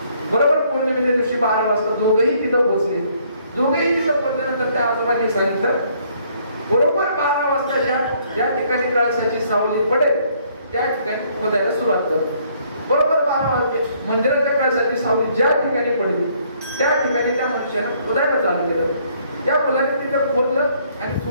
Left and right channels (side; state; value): both; inverted; correlation -0.65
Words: बरोबर पौर्णिमेच्या दिवशी 12 वाजता दोघंही तिथं पोहोचले. दोघंही तिथं पोहोचल्यानंतर त्या आजोबांनी सांगितलं बरोबर 12 वाजता ज्या ठिकाणी कळसाची सावली पडेल त्या ठिकाणी खोदायला सुरुवात कर. बरोबर 12 वाजले. मंदिराच्या कळसाची सावली ज्या ठिकाणी पडली त्या ठिकाणी त्या मनुष्यानं खोदायला चालू केलं. त्या मुलाने तिथे खोदलं आणि